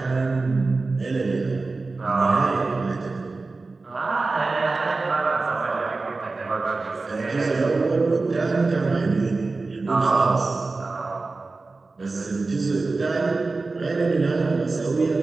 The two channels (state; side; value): quieter; left; 3.7 dB